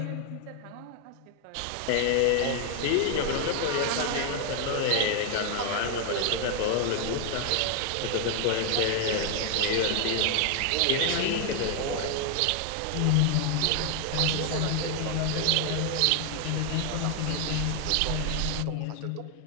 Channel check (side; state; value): both; different; correlation 0.00